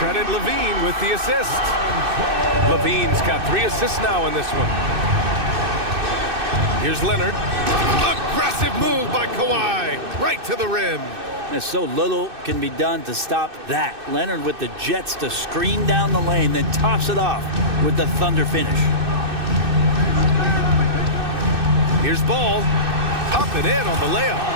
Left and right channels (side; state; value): left; late; 2.6 ms